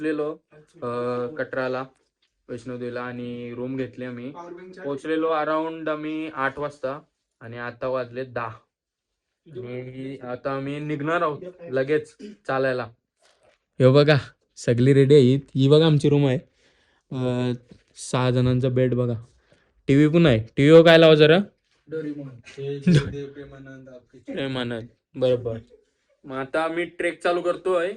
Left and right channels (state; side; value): identical; both; correlation 1.00